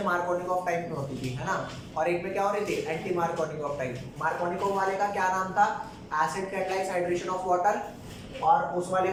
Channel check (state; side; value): identical; both; correlation 1.00